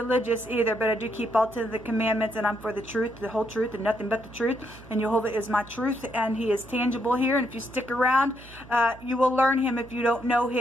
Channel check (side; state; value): right; noise; hum, 20 dB below the sound